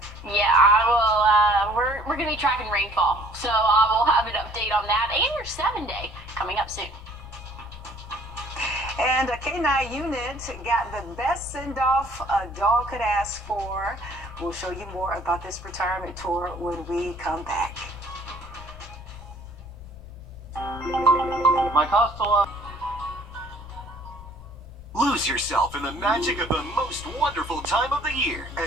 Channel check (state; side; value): noise; left; rumble, 18 dB below the sound